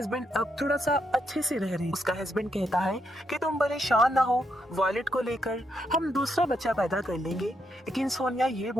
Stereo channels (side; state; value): both; normal; correlation 0.79